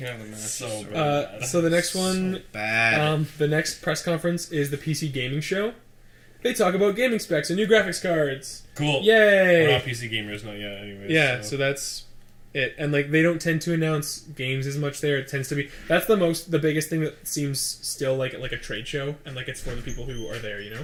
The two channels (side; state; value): both; identical; correlation 1.00